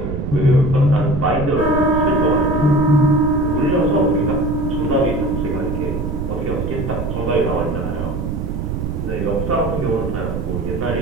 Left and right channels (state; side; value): noise; right; rumble, 3 dB below the sound